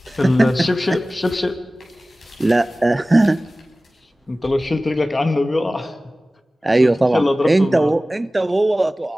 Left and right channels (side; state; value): both; normal; correlation 0.97